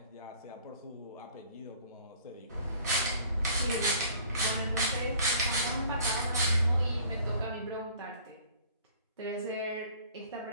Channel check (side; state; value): both; inverted; correlation -0.53